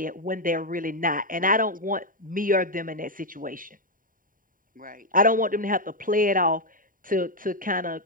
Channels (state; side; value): late; left; 0.40 ms